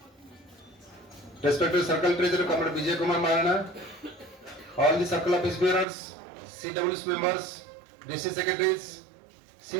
respected Circle Treasurer, Comrade Vijay Kumar Marana, all the Circle Office Bearers, CWS members, DC Secretaries,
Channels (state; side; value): drops out; left; at 5.9 s